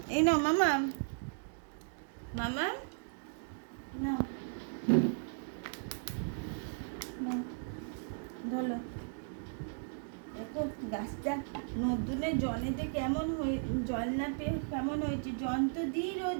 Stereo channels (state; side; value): silent; left; digital silence